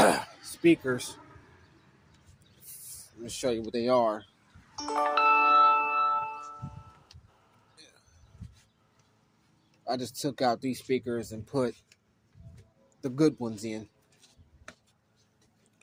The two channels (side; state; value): both; identical; correlation 1.00